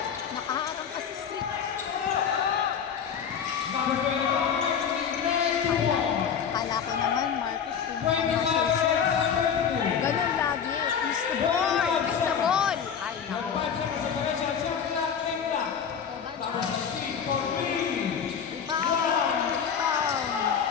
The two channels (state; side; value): quieter; right; 7.5 dB